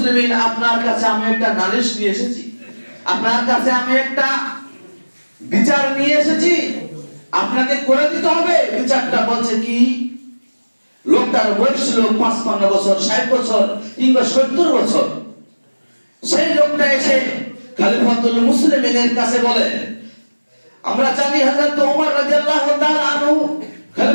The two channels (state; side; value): inverted; both; correlation -1.00